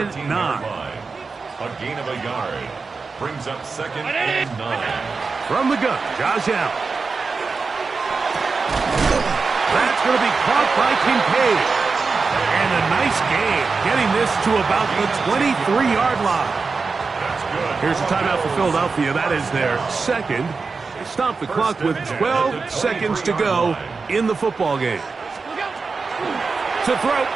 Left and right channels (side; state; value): left; quieter; 4.5 dB